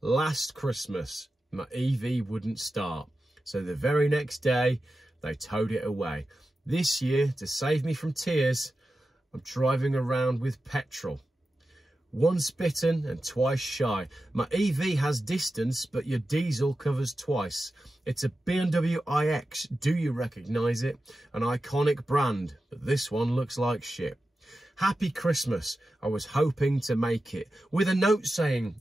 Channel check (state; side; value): normal; both; correlation 0.92